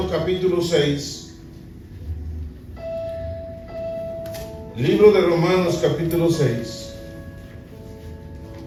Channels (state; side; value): identical; both; correlation 1.00